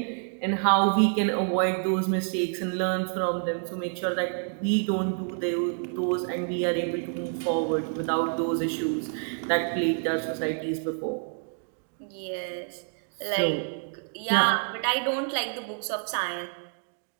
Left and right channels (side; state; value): left; silent; 59 dB below the other